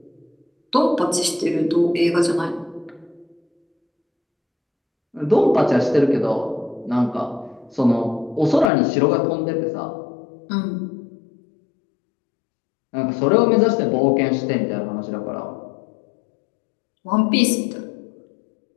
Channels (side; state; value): right; drops out; at 8.7 s